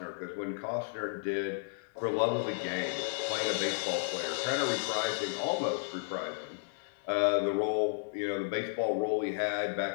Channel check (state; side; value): silent; right; 56 dB below the other